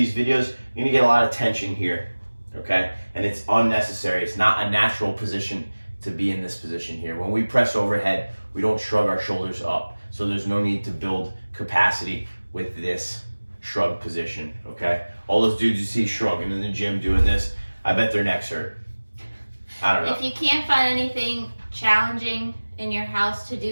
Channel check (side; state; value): both; inverted; correlation -1.00